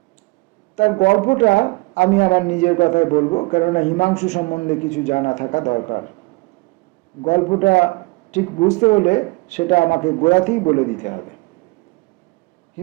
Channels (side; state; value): left; quieter; 25.5 dB